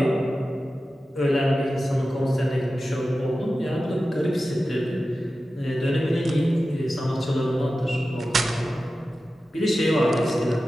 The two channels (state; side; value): normal; both; correlation 0.94